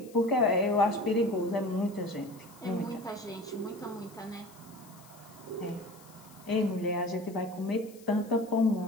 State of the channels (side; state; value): left; noise; hiss, 24 dB below the sound